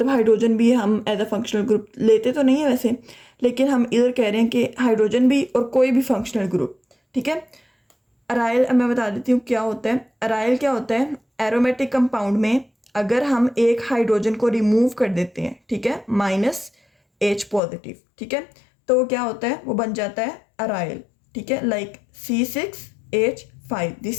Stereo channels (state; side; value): drops out; right; at 17.6 s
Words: हाइड्रोजन भी हम एज अ फंक्शनल ग्रुप लेते तो नहीं है वैसे, लेकिन हम इधर कह रहे हैं कि हाइड्रोजन भी और कोई भी फंक्शनल ग्रुप, ठीक है। अराइल मैं बता देती हूँ क्या होता है। अराइल क्या होता है, एरोमेटिक कंपाउंड में अगर हम एक हाइड्रोजन को रिमूव कर देते हैं, ठीक है, -H पॉजिटिव, ठीक है, तो क्या होता है, वो बन जाता है अराइल, ठीक है, like C6H5,